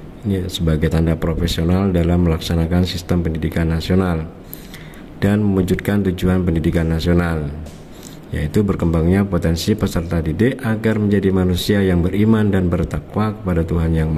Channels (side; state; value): both; identical; correlation 1.00